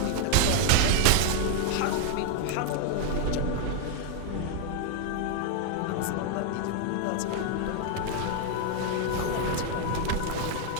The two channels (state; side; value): different; both; correlation 0.00